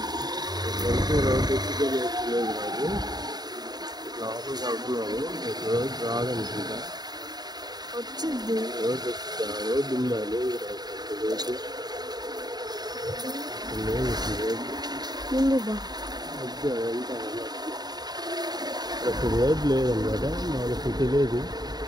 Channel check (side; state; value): left; late; 0.20 ms